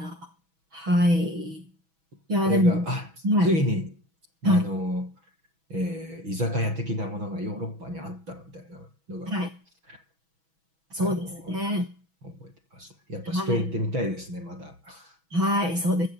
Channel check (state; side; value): late; left; 6.2 ms